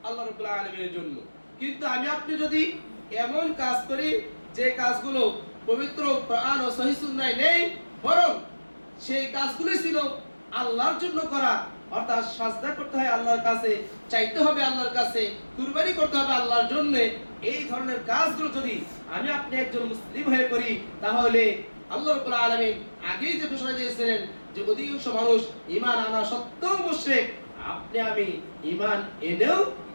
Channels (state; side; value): inverted; both; correlation -1.00